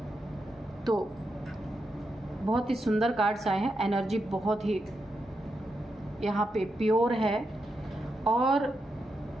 तो बहुत ही सुंदर कार्ड्स आए हैं। एनर्जी बहुत ही यहाँ पे प्योर है। और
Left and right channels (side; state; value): both; normal; correlation 0.85